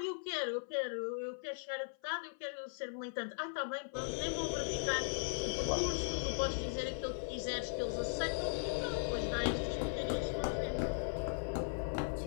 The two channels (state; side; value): silent; right; 52 dB below the other